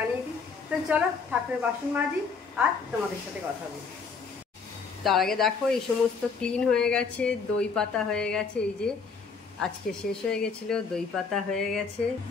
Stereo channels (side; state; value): right; quieter; 5.1 dB